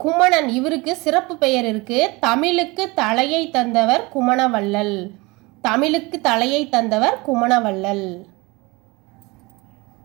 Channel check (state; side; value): quieter; left; 24.4 dB